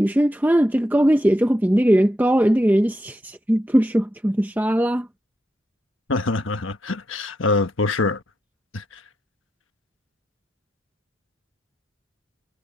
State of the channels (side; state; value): both; normal; correlation 0.85